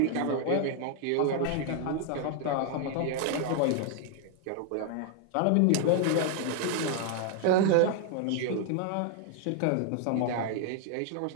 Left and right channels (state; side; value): different; both; correlation 0.00